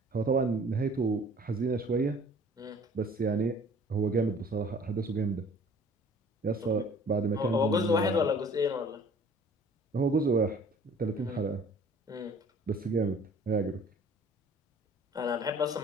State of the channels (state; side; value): normal; both; correlation 0.51